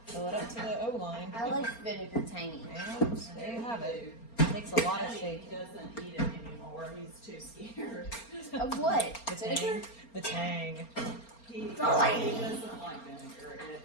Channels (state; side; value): late; right; 4.3 ms